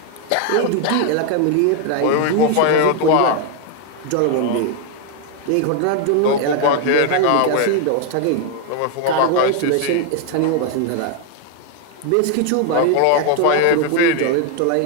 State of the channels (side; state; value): both; different; correlation 0.01